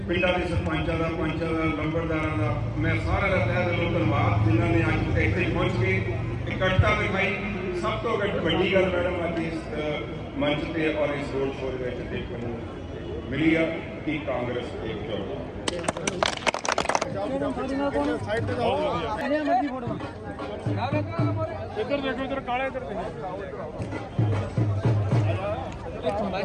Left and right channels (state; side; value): identical; both; correlation 1.00